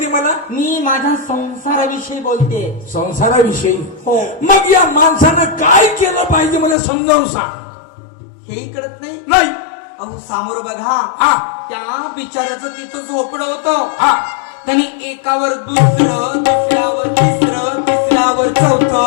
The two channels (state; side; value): drops out; right; at 6.8 s